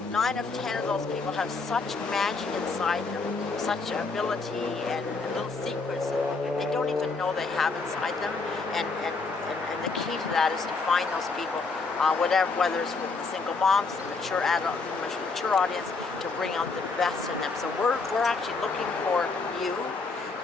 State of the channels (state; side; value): quieter; right; 4.1 dB